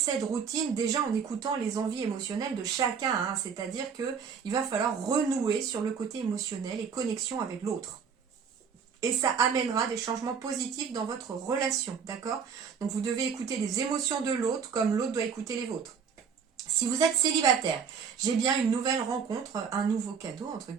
routine déjà en écoutant les envies émotionnelles de chacun, hein, c'est-à-dire qu'il va falloir renouer sur le côté émotionnel et connexion avec l'autre. Et ça amènera des changements positifs dans votre relation, d'accord? Donc vous devez écouter les émotions de l'autre comme l'autre doit écouter les vôtres. Si vous êtes célibataire, j'ai bien une nouvelle rencontre, un nouveau cadeau, entre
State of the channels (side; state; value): left; quieter; 6.5 dB